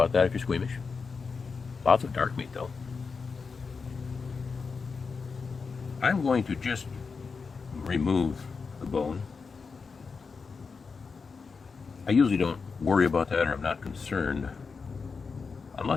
that if you're squeamish. Lots of dark meat though. I'm going to just remove the bone. I usually don't worry about that, or I'm not concerned.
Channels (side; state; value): right; quieter; 5.0 dB